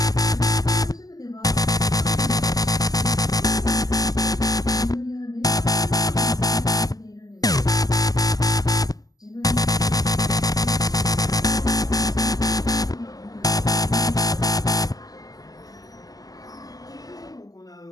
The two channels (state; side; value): late; right; 0.17 ms